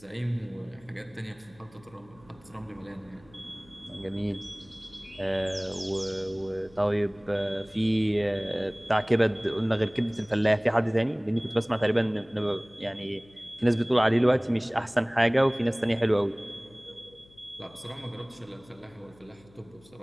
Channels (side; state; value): left; noise; hum, 26 dB below the sound